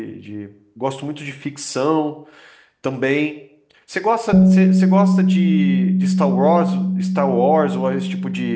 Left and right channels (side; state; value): both; identical; correlation 1.00